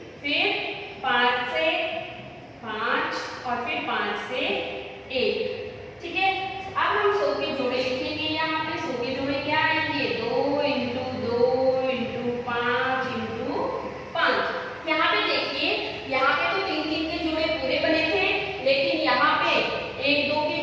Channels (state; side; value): identical; both; correlation 1.00